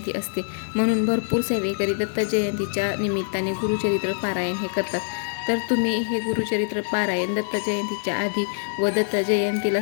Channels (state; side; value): silent; right; 62 dB below the other